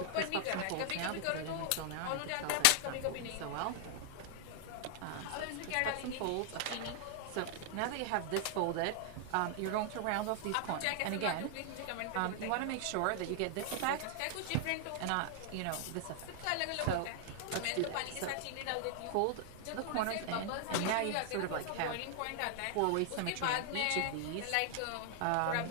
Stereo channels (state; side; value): different; both; correlation 0.00